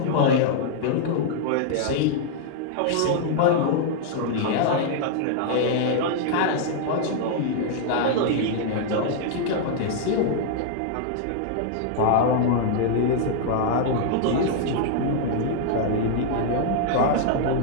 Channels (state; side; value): different; both; correlation -0.01